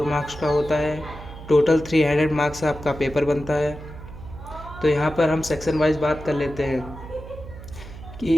मार्क्स का होता है। टोटल 300 मार्क्स का आपका पेपर बनता है। तो यहाँ पर हम सेक्शन वाइज बात कर लेते हैं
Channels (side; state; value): right; noise; hum, 14 dB below the sound